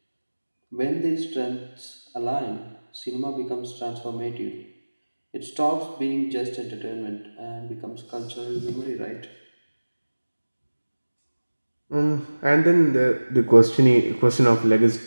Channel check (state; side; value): inverted; both; correlation -1.00